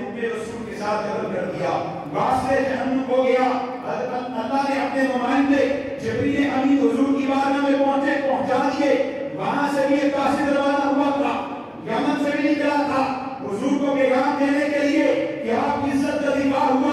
رسول کے ساتھ قتل کر دیا، واسطے جہنم ہو گیا. حضرت اللہ نے اپنے نمائندے جبریل امین حضور کی بارگاہ میں پہنچا دیے. وہاں سے بھی ایک قاصد روانہ ہوا تھا، یمن سے بھی نکلا تھا حضور کو پیغام دینے کے لیے کہ آپ کی عزت کا دفاع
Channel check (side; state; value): both; identical; correlation 1.00